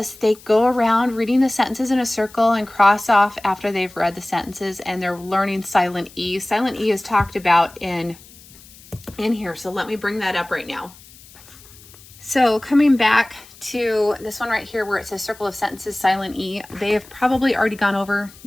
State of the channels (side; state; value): left; noise; hiss, 22 dB below the sound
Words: They go around reading the sentences in a circle and cross off after they've read the sentences, and they're learning silent E. Silent E is talked about in here. So let me bring that up right now. So coming back to this one right here where it says circle of sentences, silent E, they have probably already gone over.